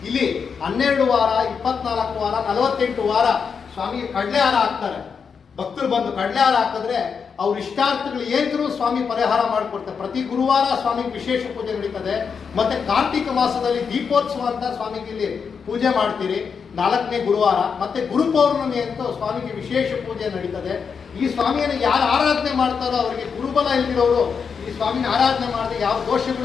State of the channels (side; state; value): right; quieter; 6.1 dB